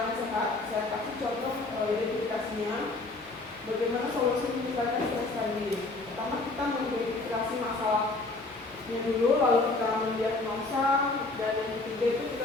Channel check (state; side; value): quieter; right; 3.2 dB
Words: sehat? Saya kasih contoh identifikasinya. Bagaimana solusi meningkatkan stres tadi? Pertama, kita mengidentifikasi masalahnya dulu, lalu kita mendiagnosa, dan yang ketiga itu